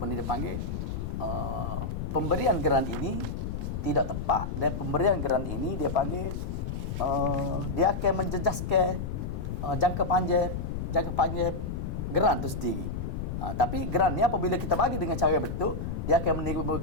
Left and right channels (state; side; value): noise; left; rumble, 4 dB below the sound